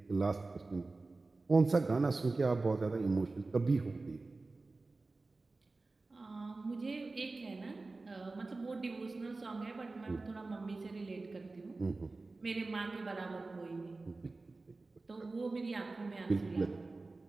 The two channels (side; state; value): left; quieter; 3.5 dB